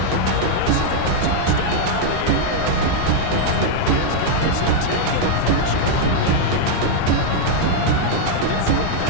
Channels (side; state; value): both; different; correlation 0.00